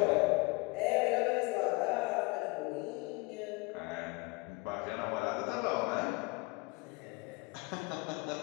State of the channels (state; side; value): quieter; right; 26.2 dB